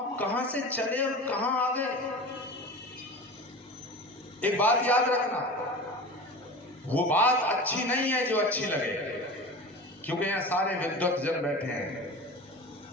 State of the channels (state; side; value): normal; both; correlation 0.33